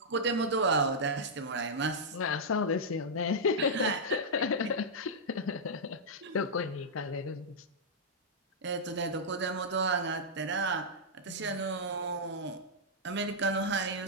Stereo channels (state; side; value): normal; both; correlation -0.09